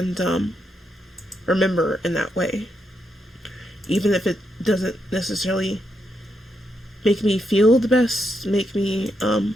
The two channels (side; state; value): both; normal; correlation 0.81